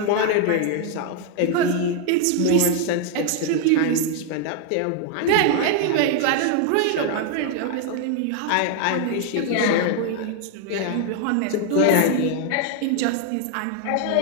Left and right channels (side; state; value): both; different; correlation 0.00